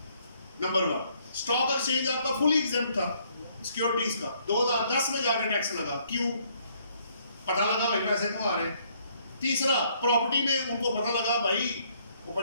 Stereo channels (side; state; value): both; inverted; correlation -0.67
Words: नंबर 1, स्टॉक एक्सचेंज आपका फुली एग्जेम्प्ट था सिक्योरिटीज का, 2010 में जाकर टैक्स लगा, क्यों? पता लगा भाई पैसे कमा रहे हैं। तीसरा, प्रॉपर्टी में उनको पता लगा भाई, वो